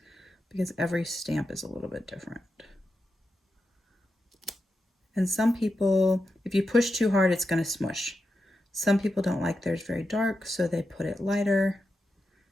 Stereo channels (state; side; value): normal; both; correlation 0.88